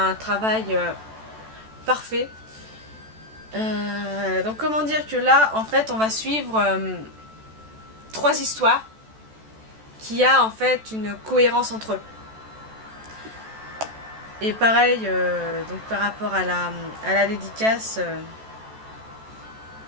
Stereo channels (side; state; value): left; late; 14 ms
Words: travail parfait. Donc comment dire que là, en fait, on va suivre 3 histoires qui a en fait une cohérence entre eux. Et pareil, donc par rapport à la dédicace,